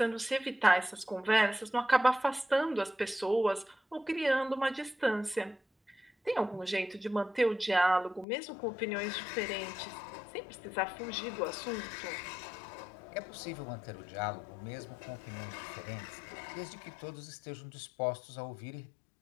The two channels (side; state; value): right; drops out; at 8.2 s